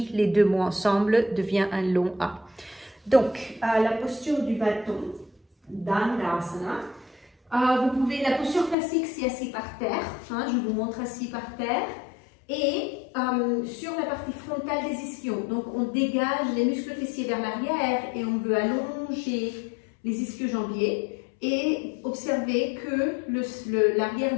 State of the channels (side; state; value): right; drops out; at 8.8 s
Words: les deux mots ensemble devient un long A. Donc, la posture du bâton, Dandasana. La posture classique, c'est assis par terre. Hein, je vous montre assis par terre. Et sur la partie frontale des ischions. Donc, on dégage les muscles fessiers vers l'arrière et on veut allonger les ischio-jambiers. Et observez que